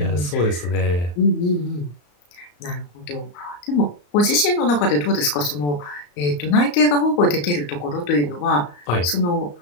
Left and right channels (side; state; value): right; late; 34 ms